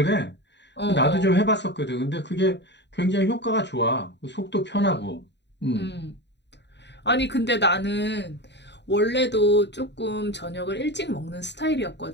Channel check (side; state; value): right; late; 0.51 ms